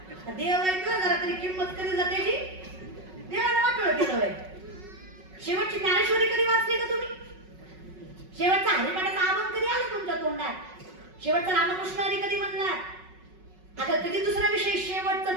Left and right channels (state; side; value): late; left; 5.4 ms